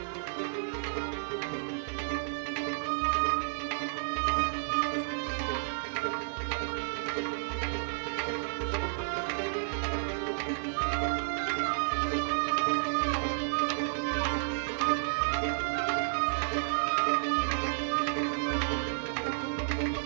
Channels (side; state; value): left; silent; 57 dB below the other